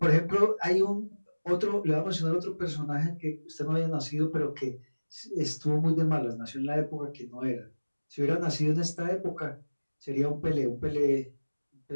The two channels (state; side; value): inverted; both; correlation -1.00